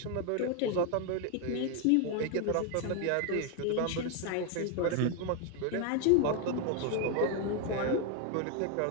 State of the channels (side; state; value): both; different; correlation 0.01